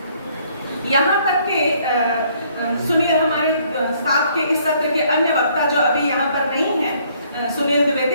सुनील, हमारे साथ के इस सत्र के अन्य वक्ता जो अभी यहाँ पर नहीं है, सुनील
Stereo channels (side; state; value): both; inverted; correlation -0.64